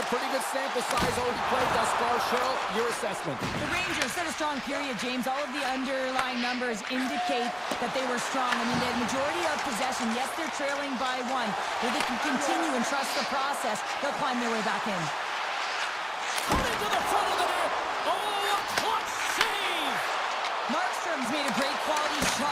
pretty good sample size already played thus far. Cheryl, your assessment. The Rangers set a strong period, James. All of the underlying numbers indicate that they were strong. I mean, they had majority of possession. Yes, they're trailing by 1. If they can continue and trust the process, they'll climb their way back in. Coming to the front of the net. Oh, a clutch save. Markstrom's made a great quality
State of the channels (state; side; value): identical; both; correlation 1.00